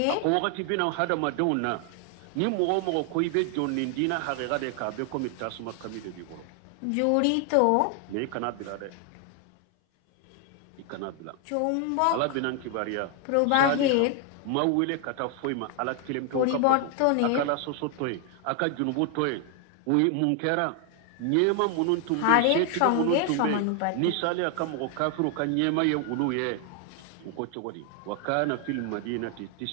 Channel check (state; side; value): different; both; correlation 0.00